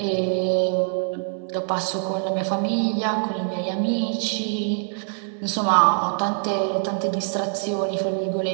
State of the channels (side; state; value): left; silent; 59 dB below the other